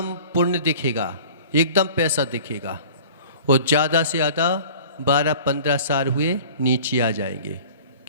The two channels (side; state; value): both; inverted; correlation -0.44